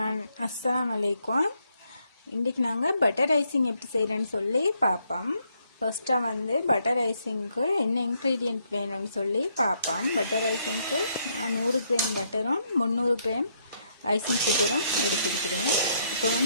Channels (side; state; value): both; inverted; correlation -0.74